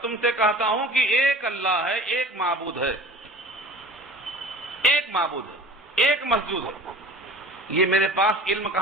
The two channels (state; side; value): normal; both; correlation 0.42